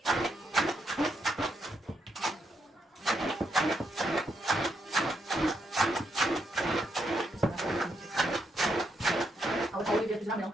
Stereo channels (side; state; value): both; normal; correlation 0.79